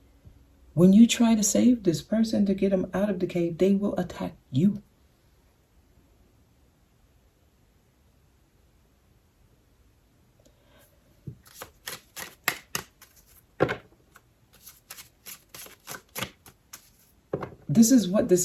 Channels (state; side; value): identical; both; correlation 1.00